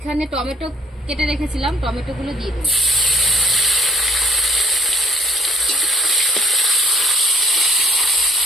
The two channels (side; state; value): both; normal; correlation 0.62